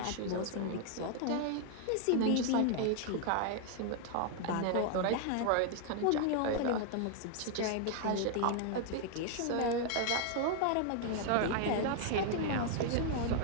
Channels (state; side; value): different; both; correlation 0.00